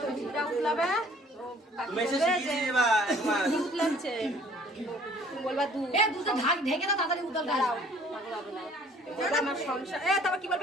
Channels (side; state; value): both; normal; correlation 0.55